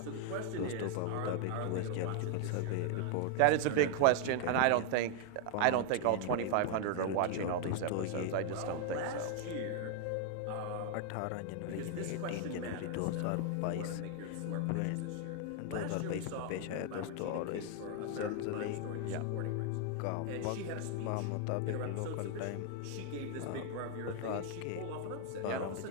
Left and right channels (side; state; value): both; different; correlation 0.00